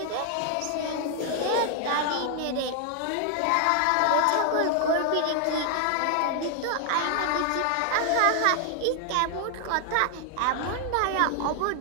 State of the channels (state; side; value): different; both; correlation 0.00